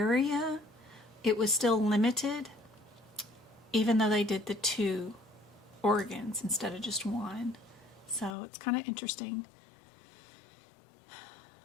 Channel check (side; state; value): right; drops out; at 8.3 s